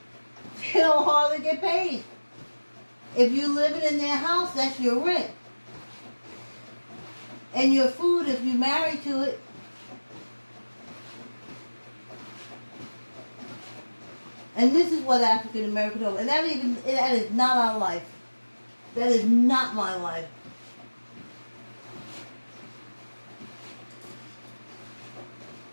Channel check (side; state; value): both; inverted; correlation -1.00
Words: they don't hardly get paid. If you living in their house, that's your rent. And your food if you marry to it. And this is what African Americans do. And that is not our life. That is not my life.